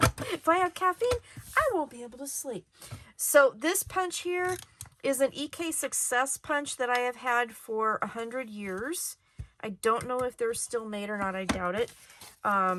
If I have caffeine, I won't be able to sleep. So this punch here is an EK Success punch that I have had for 100 years. I don't know if they're still made or not. I doubt it.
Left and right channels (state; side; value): identical; both; correlation 1.00